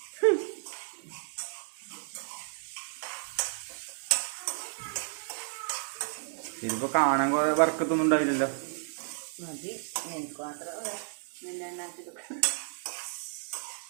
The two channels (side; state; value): left; silent; 56 dB below the other